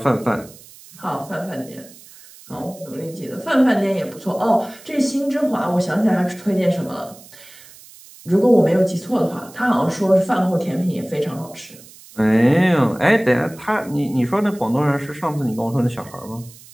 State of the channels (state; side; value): noise; right; hiss, 21 dB below the sound